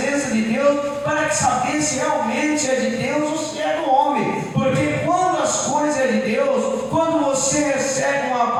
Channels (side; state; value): both; identical; correlation 1.00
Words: de Deus para saber se realmente é de Deus ou se é do homem. Porque quando as coisas é de Deus, quando você recebe uma